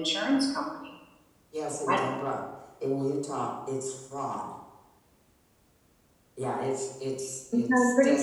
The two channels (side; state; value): both; identical; correlation 1.00